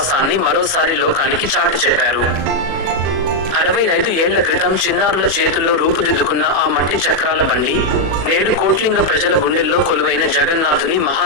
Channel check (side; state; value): left; late; 37 ms